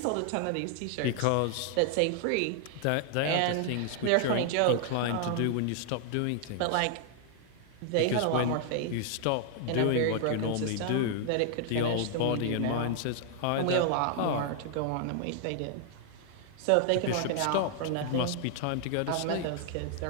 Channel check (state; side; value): different; both; correlation 0.00